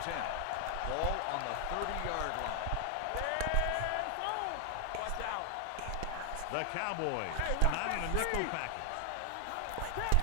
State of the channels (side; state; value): both; different; correlation 0.00